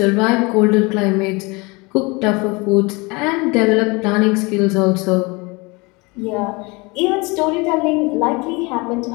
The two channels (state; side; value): quieter; right; 26.5 dB